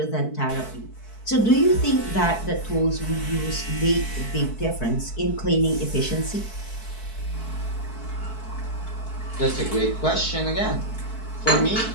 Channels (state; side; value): late; right; 4.6 ms